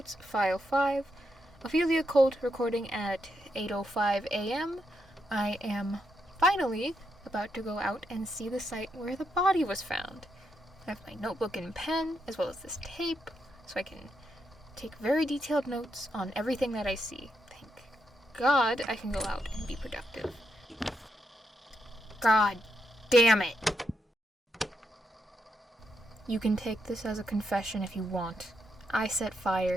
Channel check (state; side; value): normal; both; correlation 0.81